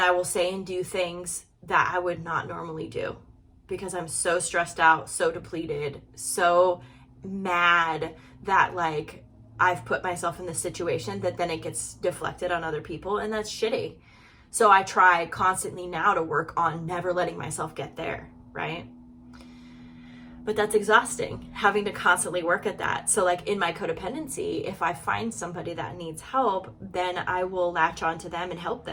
will say and do things that I would not normally do because I'm so stressed out, so depleted, so mad that like I've put myself in this situation that then it gets deflected on other people, and that's shitty. So I try constantly now to work on never letting myself get there, right? But that's exhausting, having to constantly work at that. So like in my codependency, if I find somebody that needs help, then I will latch onto them and help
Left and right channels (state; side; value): identical; both; correlation 1.00